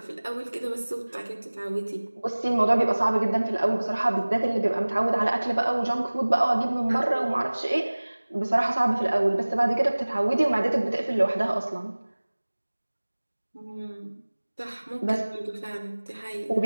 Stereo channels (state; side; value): inverted; both; correlation -1.00